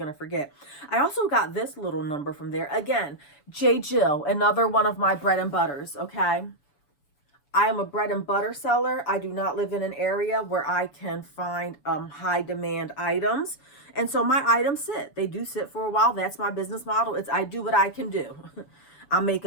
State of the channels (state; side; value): late; right; 6.9 ms